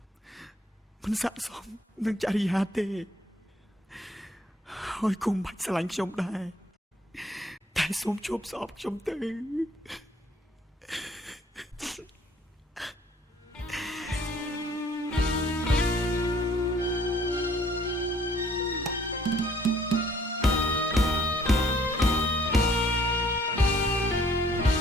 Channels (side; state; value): both; normal; correlation 0.60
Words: មិនស័ក្តិសមនឹងចរិយាទេហើយគុំបាច់ស្រឡាញ់ខ្ញុំដែរតែសូមជួបស្អប់ខ្ញុំទៅ